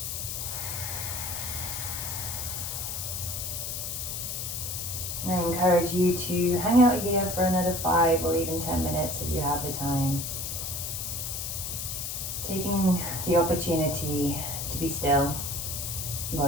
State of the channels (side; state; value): left; noise; hiss, 4 dB below the sound